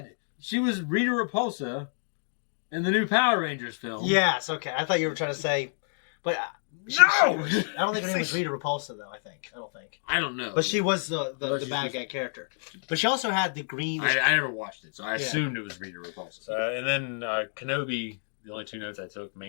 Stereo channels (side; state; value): right; silent; digital silence